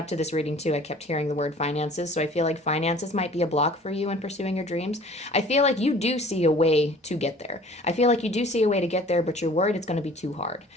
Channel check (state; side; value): normal; both; correlation 0.49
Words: to this reading too, I kept hearing the word finances. So I feel like finances might be a block for you in pursuing your dreams. I feel like you do see a way to get there. I feel like you do see a way to get there, but you're worried it's going to be too hard.